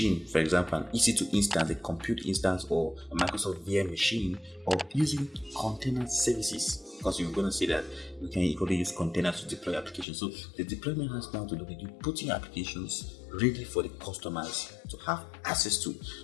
for example, an EC2 instance, a compute instance, or a Microsoft VM machine, or using container services. Because you're going to see that we can equally use containers to deploy applications. So the deployment has now to do with you putting applications ready for the customers to have access to.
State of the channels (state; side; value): drops out; right; at 10.1 s